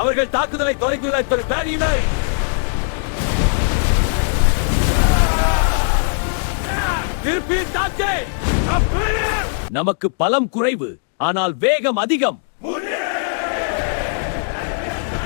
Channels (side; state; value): right; silent; digital silence